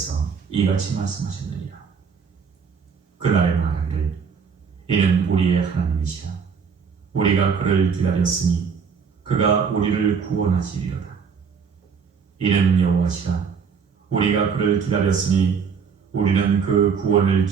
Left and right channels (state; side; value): quieter; left; 6.2 dB